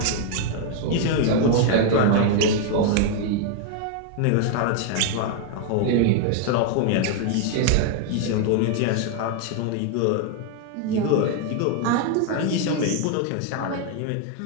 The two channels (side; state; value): both; different; correlation 0.00